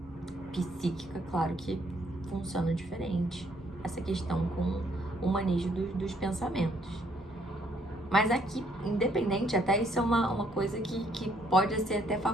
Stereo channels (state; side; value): normal; both; correlation 0.67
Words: psíquica, claro que funciona diferente essa questão com o manejo dos pensamentos. Mas aqui, independente, até isso é uma coisa que pode ser até